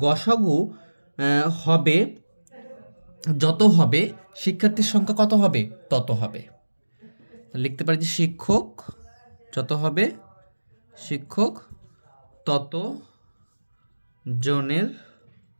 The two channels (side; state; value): both; inverted; correlation -1.00